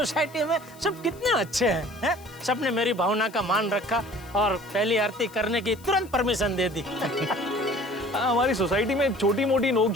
में सब कितने अच्छे हैं? सबने मेरी भावना का मान रखा और पहली आरती करने की तुरंत परमिशन दे दी। हमारी सोसाइटी में छोटी मोटी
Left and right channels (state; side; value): noise; left; hiss, 24 dB below the sound